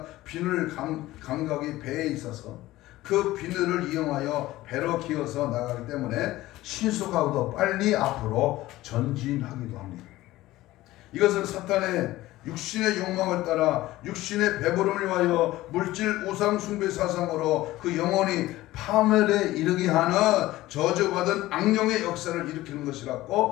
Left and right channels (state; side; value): quieter; right; 16.9 dB